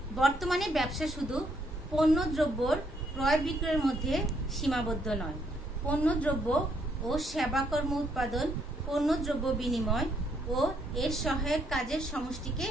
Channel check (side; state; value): both; normal; correlation 0.71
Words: বর্তমানে ব্যবসা শুধু পণ্য দ্রব্যর ক্রয় বিক্রয়ের মধ্যে সীমাবদ্ধ নয়, পণ্যদ্রব্য ও সেবাকর্ম উৎপাদন, পণ্যদ্রব্য বিনিময় ও এর সহায়ক কাজের সমষ্টিকে